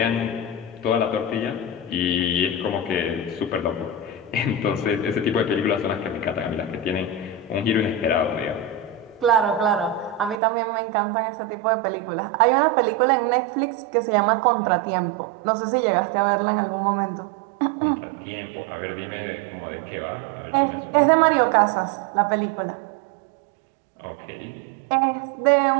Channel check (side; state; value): left; drops out; at 10.4 s